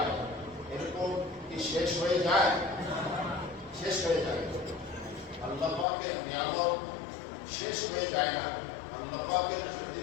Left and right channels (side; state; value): right; drops out; at 5.9 s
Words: এরকম কি শেষ হয়ে যায়? শেষ হয়ে যায়। আল্লাহ পাকের নিয়ামত শেষ হয়ে যায় না। আল্লাহ পাকের যদি